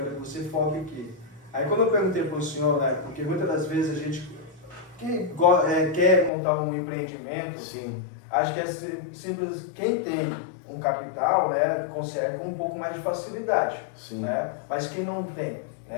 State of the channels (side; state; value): right; drops out; at 6.3 s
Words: que você foque aqui. Aí quando eu perguntei para o senhor, né, porque muitas das vezes a gente quer montar um empreendimento, Sim. acho que é simples, quem tem um capital, né, consegue com um pouco mais de facilidade. Sim. Né? Mas quem não tem,